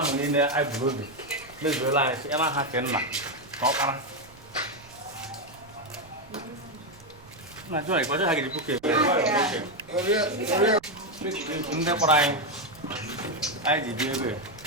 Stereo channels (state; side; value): noise; right; rumble, 23 dB below the sound